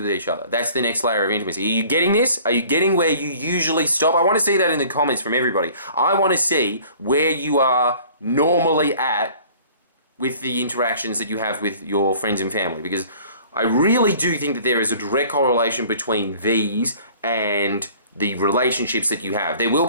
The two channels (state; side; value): inverted; both; correlation -0.50